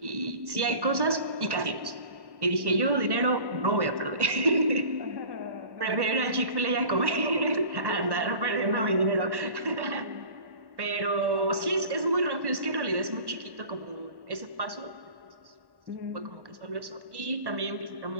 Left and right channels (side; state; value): left; late; 1.1 ms